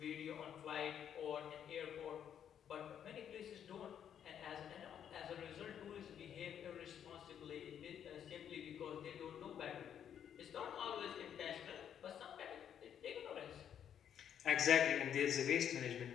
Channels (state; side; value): quieter; right; 9.1 dB